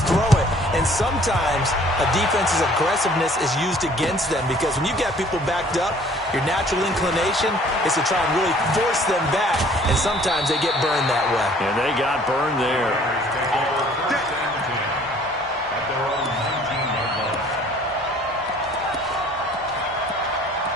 throw it. And sometimes a defense's aggressiveness is used against them because when you get people backed up, your natural inclination is to try and really force them back. And sometimes they get burned that way. And they got burned there.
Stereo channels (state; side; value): normal; both; correlation 0.55